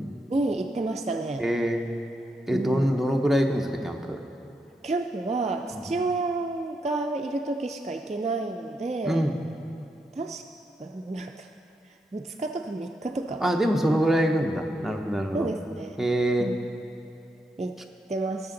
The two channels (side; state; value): both; normal; correlation 0.81